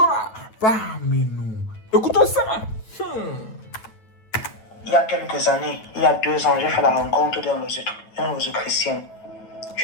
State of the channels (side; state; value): right; late; 9.2 ms